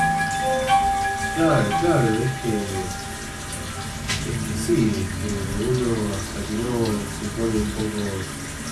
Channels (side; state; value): both; identical; correlation 1.00